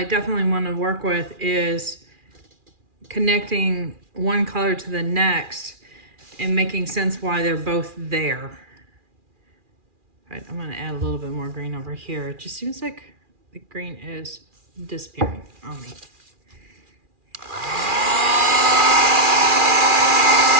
definitely want to work with is connecting one color to the next and making sense why they're both there. Right, I'm going to add a little bit more green over here. It just seems like the green is disappearing on me.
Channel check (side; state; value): left; late; 2.4 ms